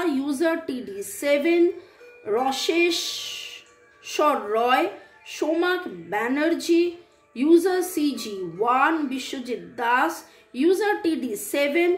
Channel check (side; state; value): both; identical; correlation 1.00